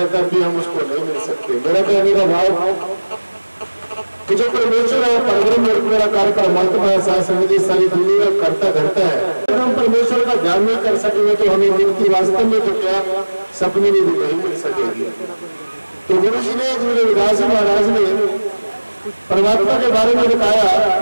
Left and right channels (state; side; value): inverted; both; correlation -1.00